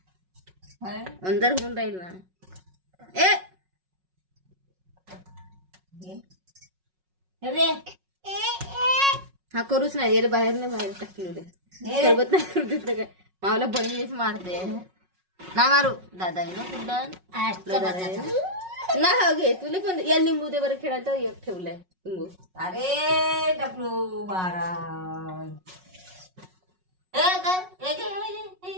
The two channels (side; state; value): left; late; 5.4 ms